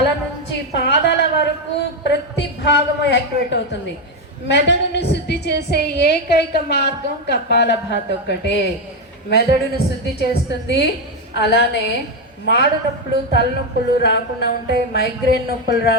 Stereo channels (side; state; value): both; normal; correlation 0.08